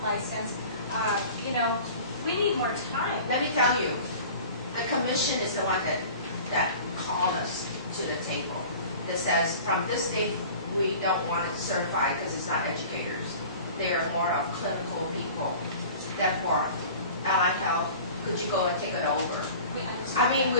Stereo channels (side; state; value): both; inverted; correlation -0.43